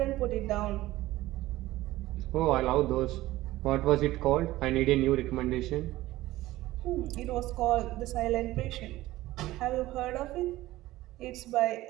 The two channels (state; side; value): quieter; left; 16.8 dB